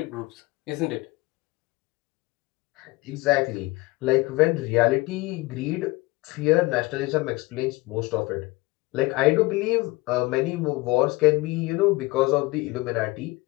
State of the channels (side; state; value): right; quieter; 22.0 dB